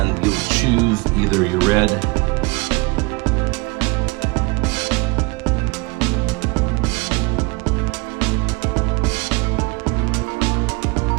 you'll choose either your red,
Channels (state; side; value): quieter; left; 27.1 dB